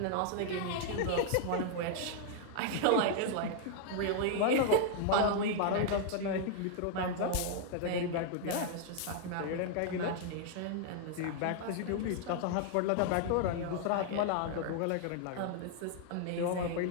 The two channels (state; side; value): different; both; correlation -0.01